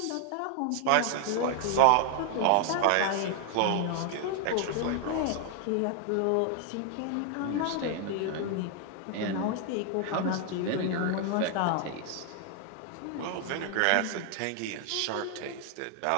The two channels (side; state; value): both; different; correlation 0.00